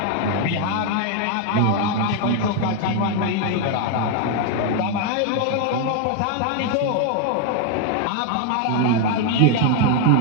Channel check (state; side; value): different; both; correlation 0.01